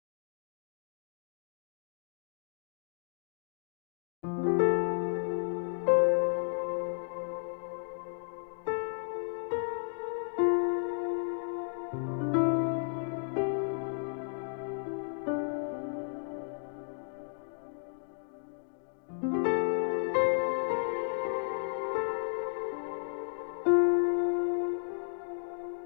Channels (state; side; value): silent; right; digital silence